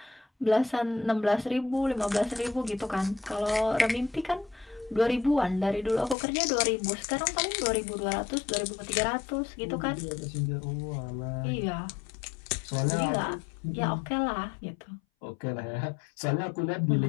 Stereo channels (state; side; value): drops out; right; at 6.2 s